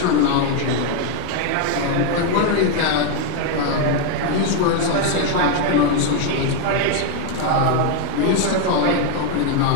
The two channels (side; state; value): both; different; correlation 0.00